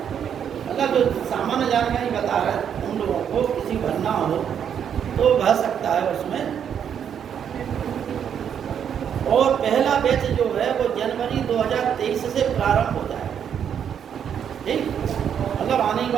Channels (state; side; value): quieter; left; 8.4 dB